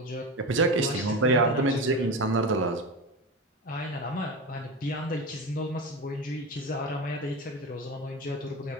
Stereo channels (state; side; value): normal; both; correlation 0.23